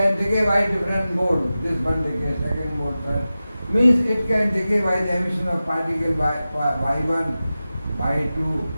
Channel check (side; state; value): both; inverted; correlation -0.95